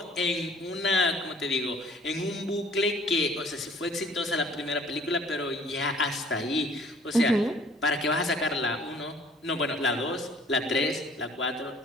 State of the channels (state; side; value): normal; both; correlation 0.54